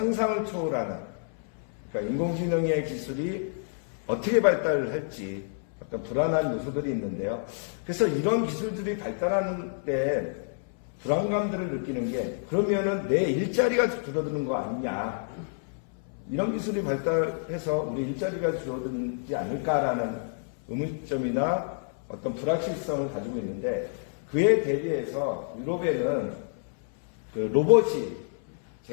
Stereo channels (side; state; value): right; silent; 59 dB below the other